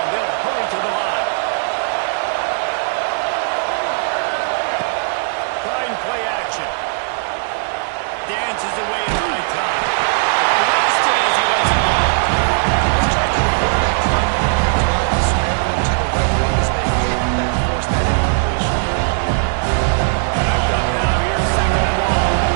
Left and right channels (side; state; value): left; silent; digital silence